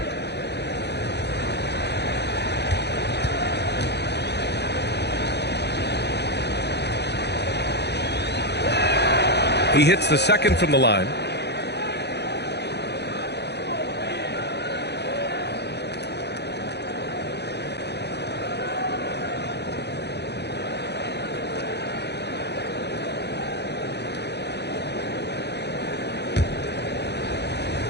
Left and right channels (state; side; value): late; right; 0.49 ms